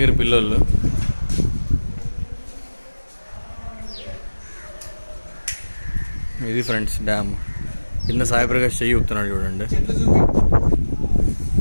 పిల్లలు ఇది ఫ్రెండ్స్ డ్యామ్ కింద సాయిప్రకాష్ చెయ్యి ఊపుతున్నాడు చూడండి.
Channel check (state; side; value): inverted; both; correlation -1.00